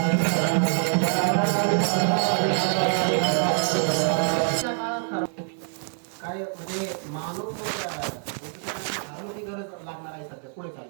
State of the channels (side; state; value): left; silent; 57 dB below the other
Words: काय म्हणजे मानव गरज लागणार आहे सध्या पुढे